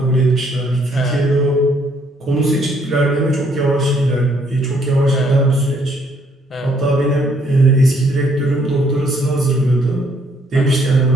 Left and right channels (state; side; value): normal; both; correlation 0.67